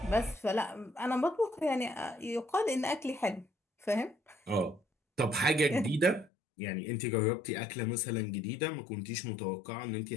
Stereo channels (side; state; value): right; drops out; at 6.3 s